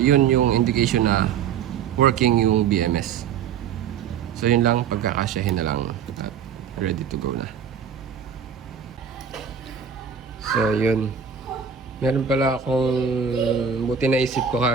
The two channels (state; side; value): quieter; left; 7.3 dB